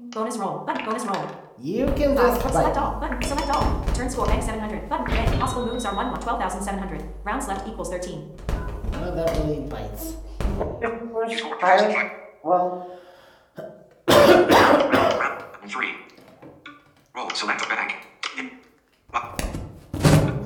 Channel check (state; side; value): identical; both; correlation 1.00